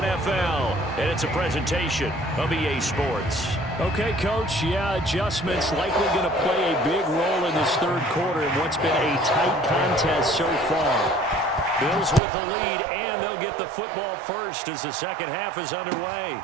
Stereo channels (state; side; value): drops out; left; at 12.2 s